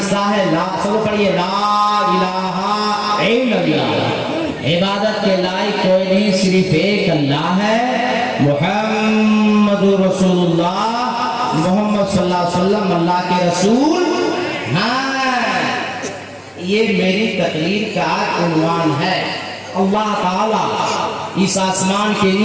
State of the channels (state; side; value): identical; both; correlation 1.00